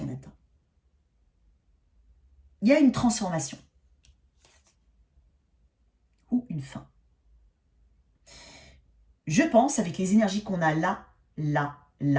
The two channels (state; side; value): identical; both; correlation 1.00